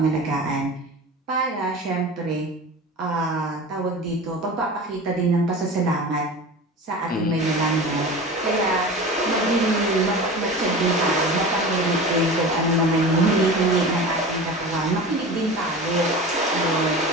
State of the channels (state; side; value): normal; both; correlation 0.33